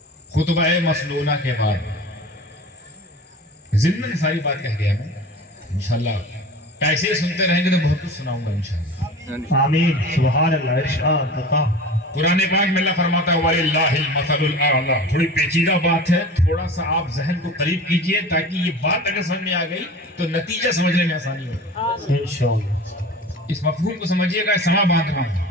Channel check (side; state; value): both; normal; correlation 0.37